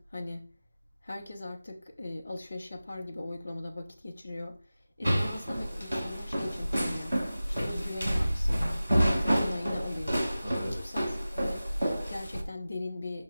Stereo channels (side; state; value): both; inverted; correlation -0.96